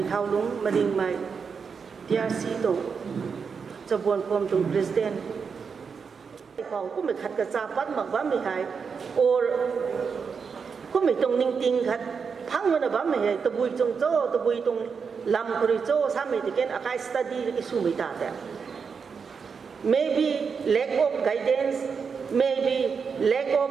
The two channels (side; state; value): left; quieter; 5.8 dB